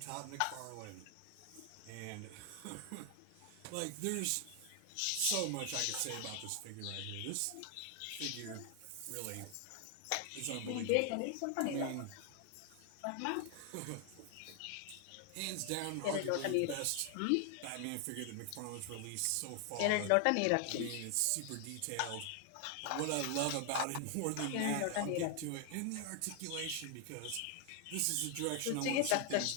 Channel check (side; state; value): both; different; correlation 0.00